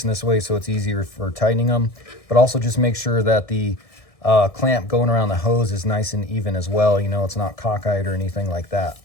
this way so it's easier for tightening them, but also just make sure that the clamp going around the hose is nice and even as well. You know, it's not cockeyed or anything like that.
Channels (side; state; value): right; late; 1.6 ms